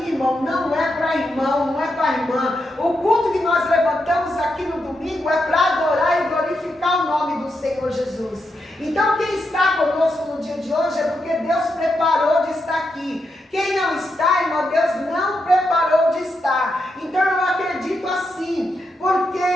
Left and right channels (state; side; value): normal; both; correlation 0.84